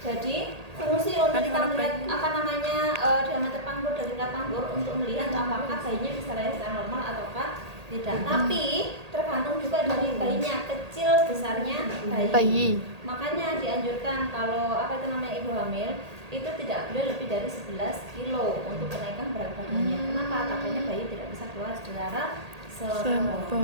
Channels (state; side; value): late; left; 1.8 ms